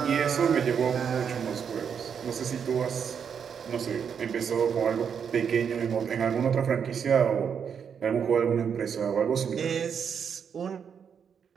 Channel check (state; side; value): quieter; left; 7.2 dB